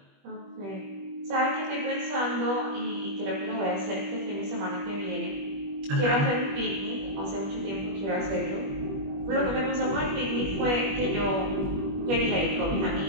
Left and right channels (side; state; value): left; late; 21 ms